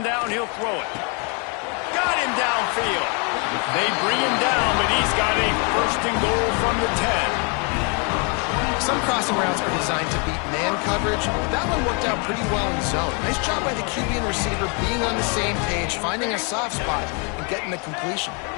down, he'll throw it. Got him downfield. They bring him down, but he's got a 1st and goal from the 10. Some crossing routes are designed to beat man coverage. That one worked out pretty well in zone. Nice job by the QB and receiver being on the same page, finding a soft spot, and getting the completion.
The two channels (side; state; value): right; quieter; 35.3 dB